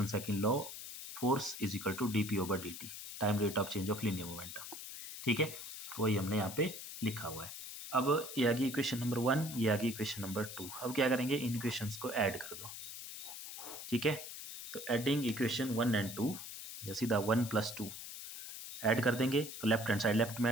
second law force is equal to dP over dt, time rate of change of linear momentum. ठीक है, तो वही हमने यहाँ पे लिखा हुआ है। अब ये आ गई इक्वेशन नंबर 1, ये आ गई इक्वेशन नंबर 2। अब क्या करेंगे, इन इक्वेशंस को ऐड कर दो। ठीक है, तो एडिंग इक्वेशन 1 एंड 2, या सीधा 1 + 2 ऐड कर देंगे, तो लेफ्ट हैंड साइड लेफ्ट में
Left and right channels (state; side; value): noise; left; hiss, 9 dB below the sound